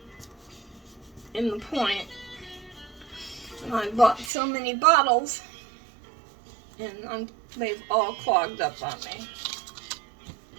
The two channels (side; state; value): left; drops out; at 4.3 s